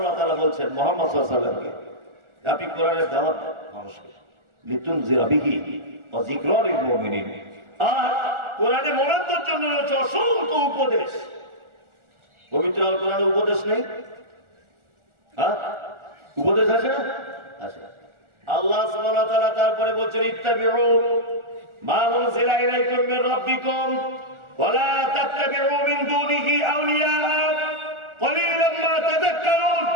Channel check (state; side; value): late; left; 1.4 ms